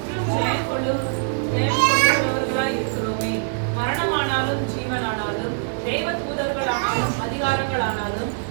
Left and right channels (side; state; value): left; silent; digital silence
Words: ஜெயம் கொள்ளுகிறவர்களாய் இருக்கிறோமே. மரணமானாலும் ஜீவனானாலும் தேவ தூதர்களானாலும் அதிகாரங்களானாலும்